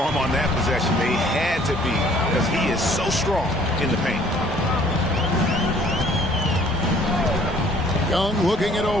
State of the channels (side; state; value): both; normal; correlation 0.57